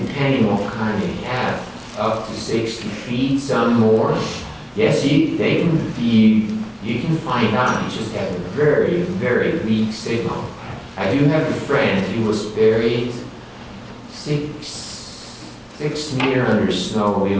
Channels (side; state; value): both; identical; correlation 1.00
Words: what kind you have, up to 60 feet, some more. Yes, you can find out, you just have a very, very weak signal. I do have a friend, he was buried 6 meters under snow. He